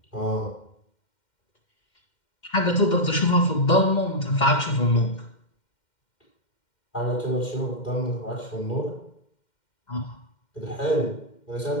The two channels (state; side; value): late; right; 2.1 ms